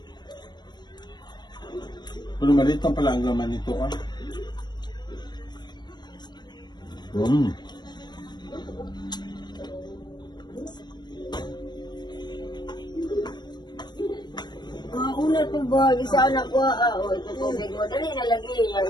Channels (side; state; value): right; late; 0.21 ms